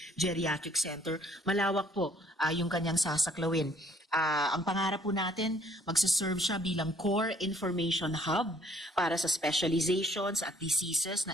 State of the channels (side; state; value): both; normal; correlation 0.62